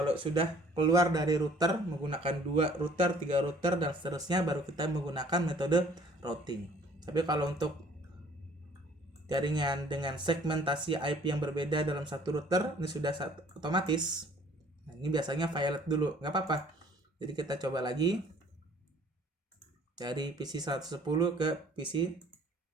sudah keluar dari router menggunakan 2 router, 3 router dan seterusnya baru kita menggunakan metode routing. Tapi kalau untuk jaringan dengan segmentasi IP yang berbeda dalam satu router ini sudah otomatis. Nah, ini biasanya violet dulu, nggak apa-apa. Jadi kita coba lagi dari PC 110 ke PC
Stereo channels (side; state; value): both; normal; correlation 0.55